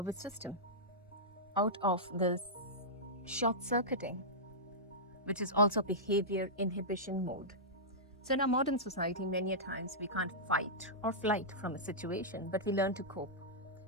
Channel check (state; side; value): normal; both; correlation -0.13